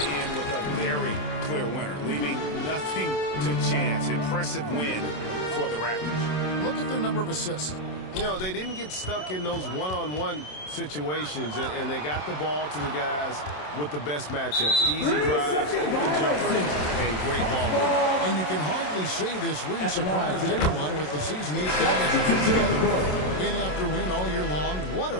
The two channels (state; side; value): late; right; 27 ms